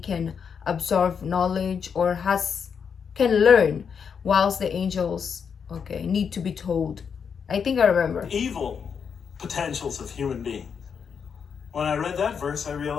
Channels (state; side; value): quieter; right; 6.7 dB